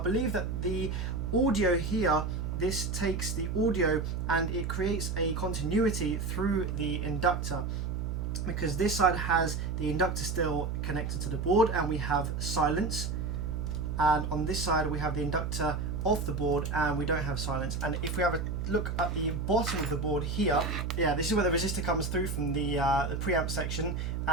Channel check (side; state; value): right; noise; hum, 2 dB below the sound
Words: believe that the audio here, this takes the audio and it creates a continuity through the inductor, because this side has the inductor still connected to the board and we have silence, and on this side we have the inductor off the board and we don't have silence. And if we have a look at the bottom of the board here, yeah, this is where the resistor comes through from the preamp section,